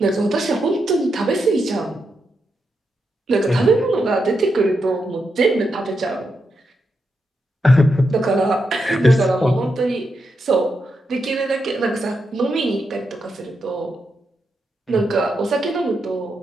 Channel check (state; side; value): normal; both; correlation 0.84